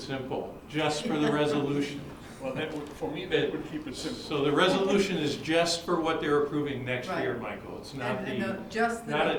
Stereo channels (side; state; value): both; identical; correlation 1.00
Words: simple, just for the resolution. Well, that would, for me, that would keep it simple. So the resolution is just for what they're approving next year, Right. Michael. It's not Just the not a